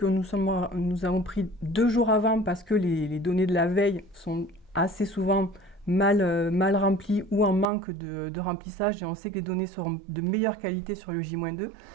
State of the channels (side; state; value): left; drops out; at 7.7 s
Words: nous avons pris 2 jours avant parce que les données de la veille sont assez souvent mal remplies ou en manque de remplissage et on sait que les données seront de meilleure qualité sur le J-2.